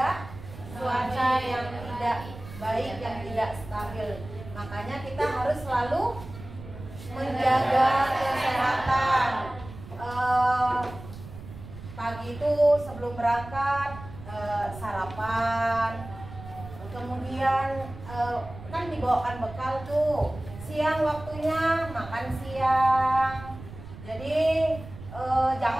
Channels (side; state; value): right; noise; rumble, 14 dB below the sound